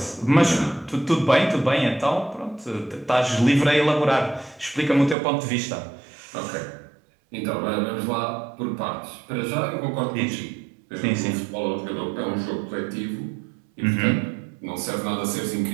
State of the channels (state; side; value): drops out; left; at 5.2 s